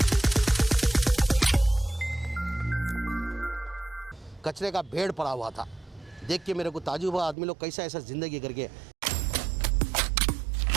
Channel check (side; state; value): left; drops out; at 7.4 s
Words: कचरे का ढेर पड़ा हुआ था, देख के मेरे को ताज्जुब हुआ, आदमी लोग कैसा ऐसा जिंदगी करके।